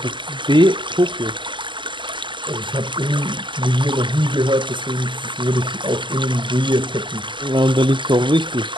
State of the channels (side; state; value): left; late; 0.23 ms